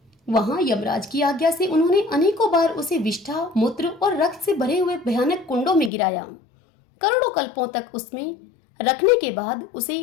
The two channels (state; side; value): drops out; right; at 5.9 s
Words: वहां यमराज की आज्ञा से उन्होंने अनेकों बार उसे विष्ठा, मूत्र और रक्त से भरे हुए भयानक कुंडों में गिराया। करोड़ों कल्पों तक उसमें रखने के बाद उसे